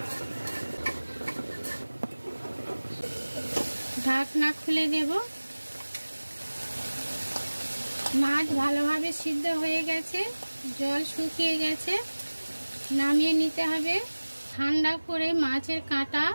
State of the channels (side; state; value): both; inverted; correlation -1.00